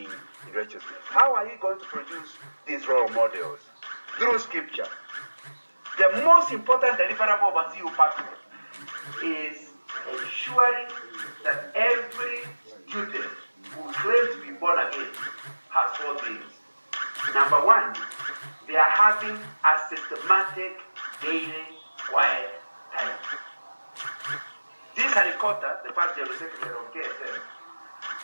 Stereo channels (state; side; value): inverted; both; correlation -1.00